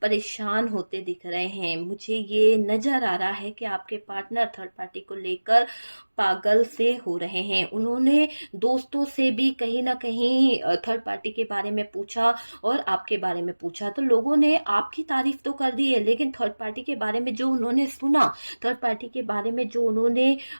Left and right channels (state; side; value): inverted; both; correlation -1.00